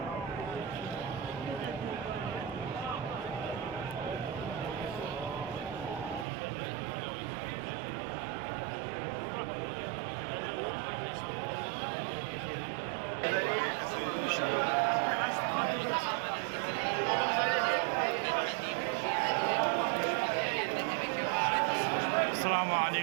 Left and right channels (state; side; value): drops out; left; at 6.2 s